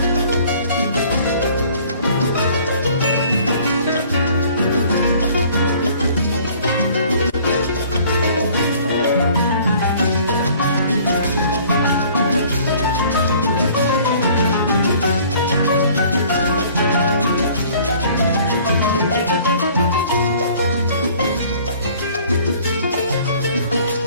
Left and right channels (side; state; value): both; inverted; correlation -0.54